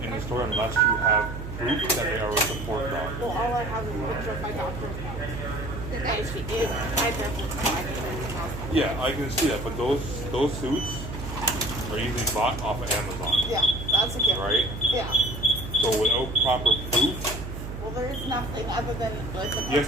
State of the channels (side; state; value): right; noise; hum, 8 dB below the sound